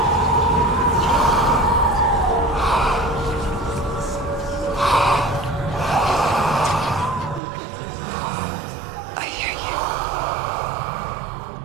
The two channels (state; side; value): drops out; left; at 7.4 s